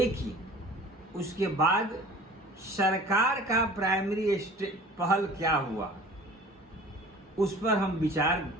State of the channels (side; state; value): both; normal; correlation 0.44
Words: उसके बाद सरकार का प्राइमरी पहल क्या हुआ, उस पर हम विचार